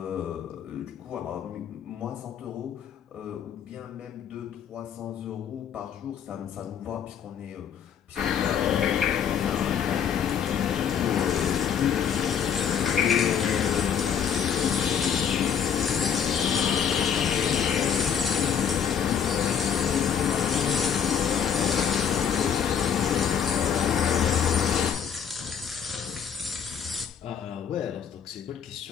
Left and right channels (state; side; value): quieter; right; 8.0 dB